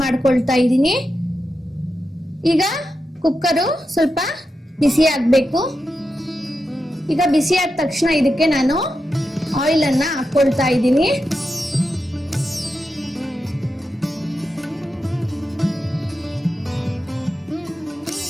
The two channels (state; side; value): normal; both; correlation 0.88